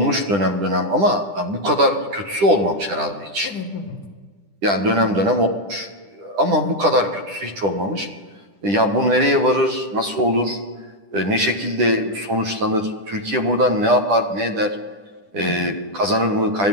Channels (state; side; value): late; left; 10 ms